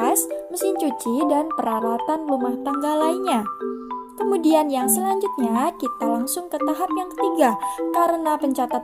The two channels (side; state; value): both; identical; correlation 1.00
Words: mesin cuci, dan peralatan rumah tangga lainnya. Kemudian yang selanjutnya kita langsung ke tahap yang ketiga, karena